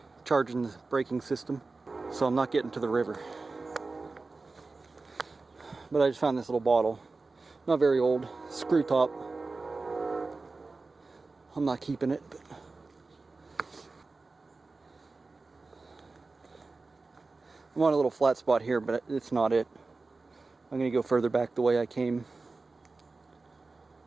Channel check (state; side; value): quieter; left; 3.7 dB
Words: charging the braking system. So I'm not getting to the river. But I just found this little bottle. Not very old. Screw top. I'm not keeping it, but I'm on a little flat spot here, but it's not it. I'm gonna go further back the way I came.